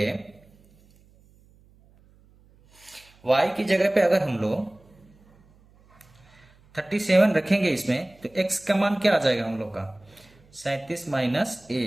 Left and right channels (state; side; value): noise; right; hum, 29 dB below the sound